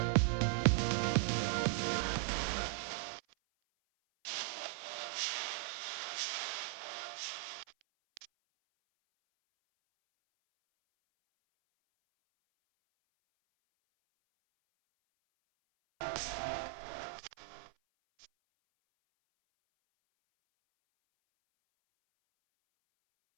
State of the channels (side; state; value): left; silent; 52 dB below the other